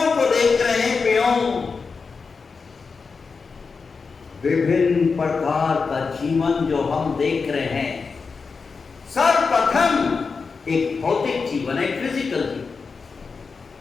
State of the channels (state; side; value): quieter; right; 4.9 dB